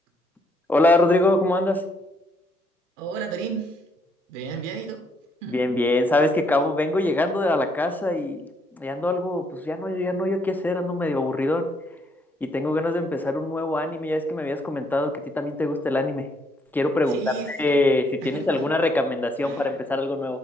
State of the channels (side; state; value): both; normal; correlation 0.71